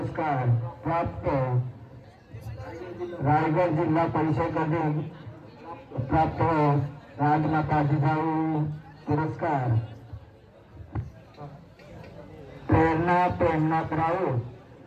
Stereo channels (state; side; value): identical; both; correlation 1.00